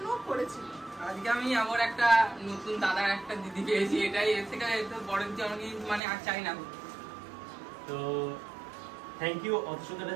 করেছিল। আজকে আমি আমার একটা নতুন দাদার একটা দিদি পেয়েছি, এটাই এর থেকে বড় কিছু আমাকে মানে আর চাই না। তো থ্যাংক ইউ অত সুন্দর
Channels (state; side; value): drops out; left; at 6.0 s